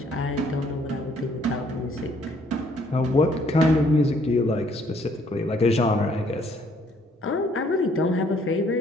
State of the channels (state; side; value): normal; both; correlation 0.64